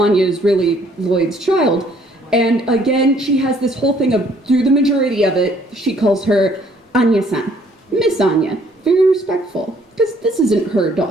is really Lloyd's child. And again, she has this whole thing of, through the majority of it, she calls her Anya-san, Miss Anya, very respectful, because this isn't her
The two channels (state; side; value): normal; both; correlation 0.62